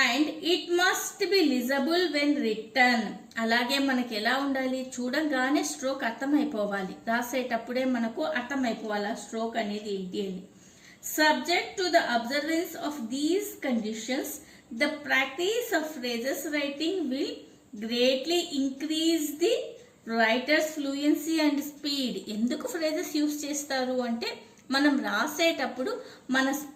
And it must be legible when written. అలాగే మనకి ఎలా ఉండాలి, చూడంగానే స్ట్రోక్ అర్థమైపోవాలి. రాసేటప్పుడే మనకు అర్థమైపోవాలి ఆ స్ట్రోక్ అనేది ఏంటి అని. Subject to the observance of these conditions, the practice of phrases writing will greatly increase the writer's fluency and speed. ఎందుకు phrases యూస్ చేస్తారు అంటే మనం రాసేటప్పుడు మన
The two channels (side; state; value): both; identical; correlation 1.00